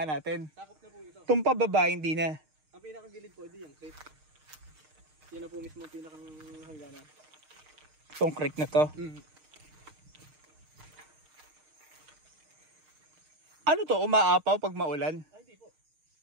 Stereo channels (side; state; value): left; late; 6.5 ms